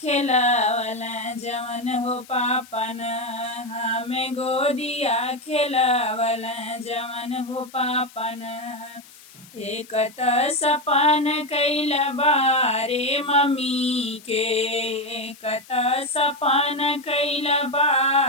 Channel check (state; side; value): noise; left; hiss, 22 dB below the sound